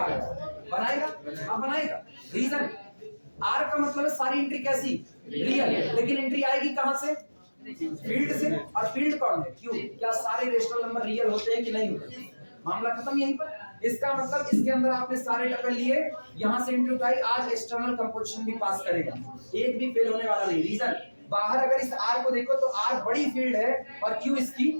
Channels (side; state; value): both; inverted; correlation -1.00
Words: रहे हैं, बनाएगा, हाँ बनाएगा। रीजन, R का मतलब है सारी एंट्री कैसी, रियल। लेकिन एंट्री आएगी कहां से, फील्ड से। और फील्ड कौन है, Q। क्या सारे रेशनल नंबर रियल होते हैं कि नहीं होते, मामला खत्म यहीं पर। इसका मतलब इसके अंदर आपने सारे टपल लिए, यहां से एंट्री उठाई, आज एक्सटर्नल कंपोजिशन भी पास करेगा, एक भी फेल होने वाला नहीं। रीजन, बाहर अगर इस R को देखो तो R बड़ी फील्ड है और Q इसकी